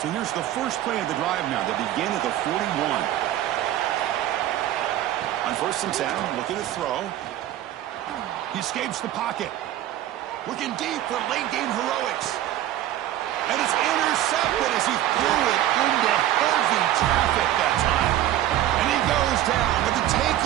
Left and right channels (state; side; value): quieter; left; 13.1 dB